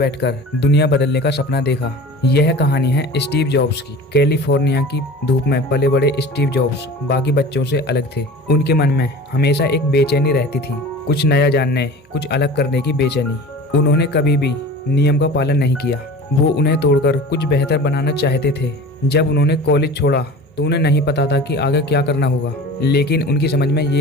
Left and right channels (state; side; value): normal; both; correlation 0.38